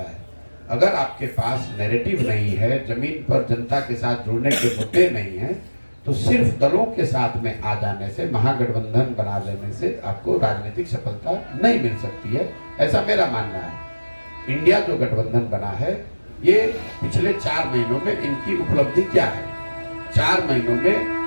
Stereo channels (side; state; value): both; inverted; correlation -1.00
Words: है? अगर आपके पास नैरेटिव नहीं है, जमीन पर जनता के साथ जुड़ने के मुद्दे नहीं है, तो सिर्फ दलों के साथ में आ जाने से, महागठबंधन बना लेने से आपको राजनीतिक सफलता नहीं मिल सकती है, ऐसा मेरा मानना है। इंडिया जो गठबंधन बना है, ये पिछले 4 महीनों में इनकी उपलब्धि क्या है? 4 महीनों में